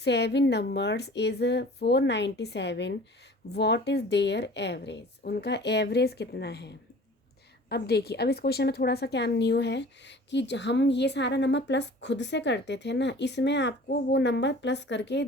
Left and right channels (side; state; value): both; normal; correlation 0.45